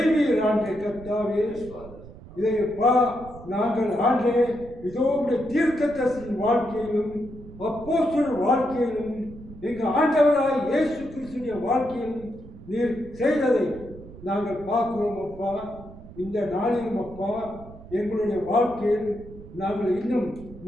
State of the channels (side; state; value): right; noise; rumble, 17 dB below the sound